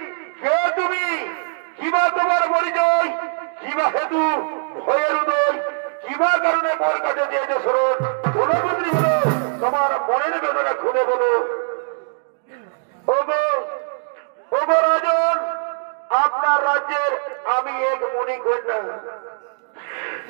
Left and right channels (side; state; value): left; silent; digital silence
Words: তোমার মনের বেদনা খুলে বলো। ওগো রাজন, আপনার রাজ্যের আমি এক মণিকন্যা,